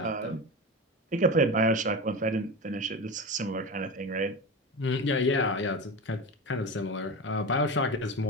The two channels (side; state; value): both; normal; correlation 0.24